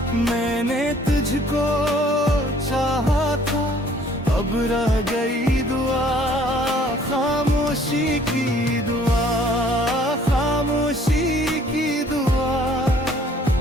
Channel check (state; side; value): normal; both; correlation 0.58